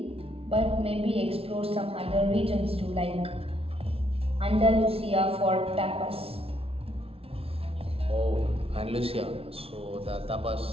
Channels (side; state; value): left; late; 0.28 ms